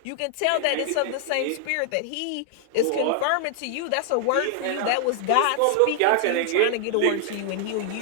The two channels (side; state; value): both; different; correlation 0.00